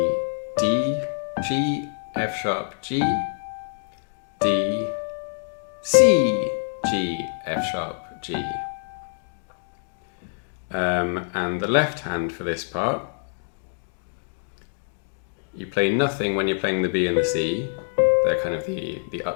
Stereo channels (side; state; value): right; silent; digital silence